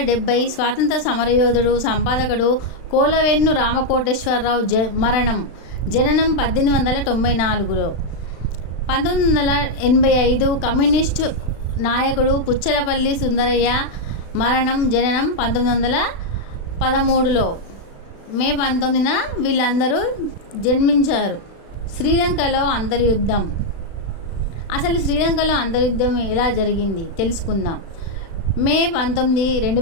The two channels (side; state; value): right; late; 36 ms